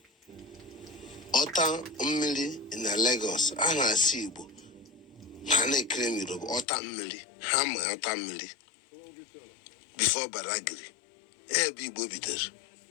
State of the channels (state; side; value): drops out; right; at 6.7 s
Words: ọta mmiri na Lagos, a na-asụ Igbo ha na-ekere m Yoruba ọta mmiri, ha ma ọta mmiri before Badagry ebe Igbo bidoro.